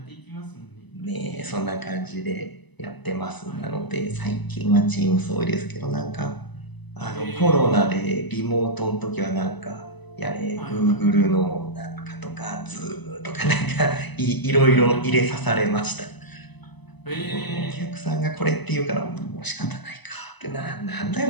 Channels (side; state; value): right; late; 1.0 ms